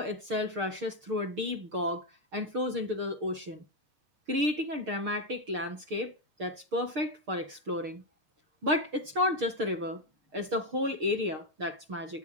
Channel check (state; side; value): late; left; 6.5 ms